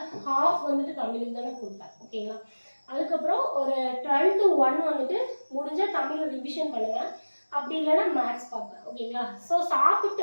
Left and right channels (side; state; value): both; inverted; correlation -1.00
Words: ஹாஃப் வந்துட்டு தமிழுக்கு தானே கொடுப்பேன். ஓகேங்களா? அதுக்கப்புறம் ஒரு 12 to 1 வந்துட்டு முடிஞ்சால் தமிழ் ரிவிஷன் பண்ணுவேன். அப்படி இல்லைன்னா மேக்ஸ் பார்ப்பேன். ஓகேங்களா? ஸோ சாப்பிட்டு